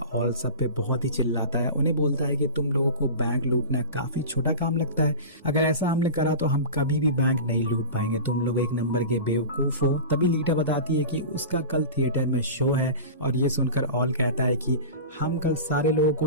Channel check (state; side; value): inverted; both; correlation -0.32